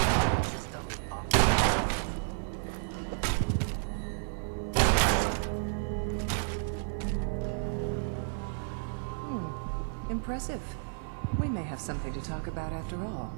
System off. Impressive. We may have something to talk about after all.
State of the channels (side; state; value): left; silent; 57 dB below the other